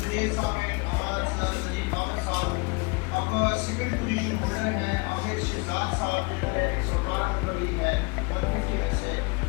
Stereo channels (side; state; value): right; quieter; 28.7 dB